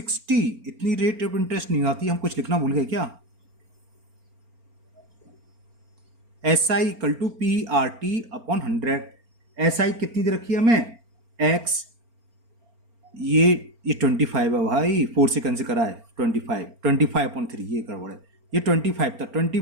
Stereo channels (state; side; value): late; left; 4.4 ms